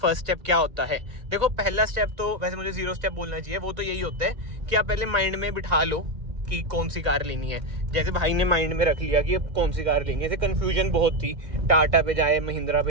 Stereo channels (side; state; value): left; late; 2.1 ms